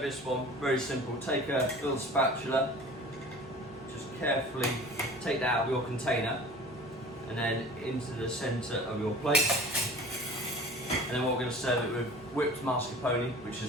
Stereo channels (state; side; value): normal; both; correlation 0.43